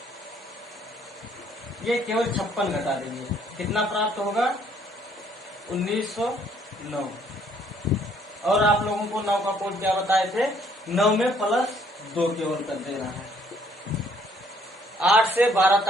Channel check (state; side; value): normal; both; correlation 0.64